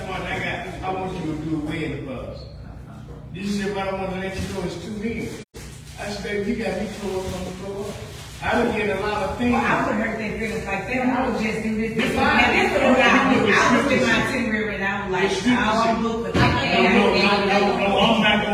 Martin, I want you to do a wedding for us. She said, but I want to let you know it's 2 men. I said, baby, you got me tore up on the floor. I would get a lot of things. well, I would hurt their feelings like that. I would just do this. This Fine. and this is what I would do. I would spend my itinerary and I was like, I don't look for that. No, I'm not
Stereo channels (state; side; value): identical; both; correlation 1.00